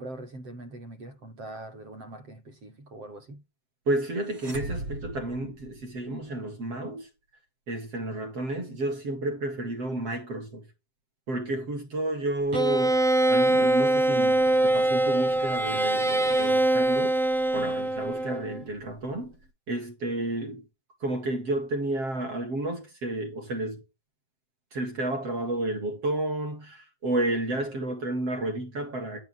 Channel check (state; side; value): late; left; 7.6 ms